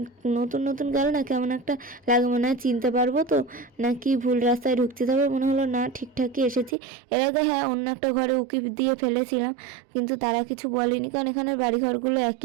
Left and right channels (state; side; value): drops out; left; at 6.8 s